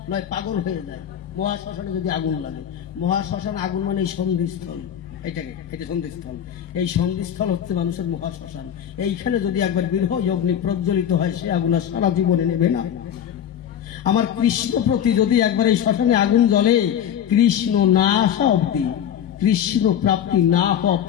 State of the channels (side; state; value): right; quieter; 9.6 dB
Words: নয় পাগল হয়ে যায়। মহাশ্মশানে যদি আগুন লাগে, মহাশ্মশান আগুন মানে এই সন্ধিস্থল, এটা সন্ধিস্থল। এই সন্ধিস্থল হচ্ছে মানুষের মহাশ্মশান। এইখানে যদি একবার বিরহ অগ্নি প্রজ্বলিত হয়, সে আগুন সারা জীবনে নেবে না। আমার কৃষ্ণ প্রতি যদি একবার এই শ্মশানে আগুন জ্বলে, কৃষ্ণ না আসা অব্দি, কৃষ্ণ প্রাপ্তি না হওয়া